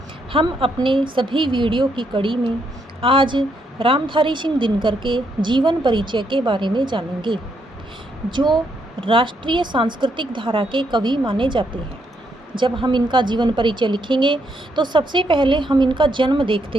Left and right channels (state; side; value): normal; both; correlation 0.76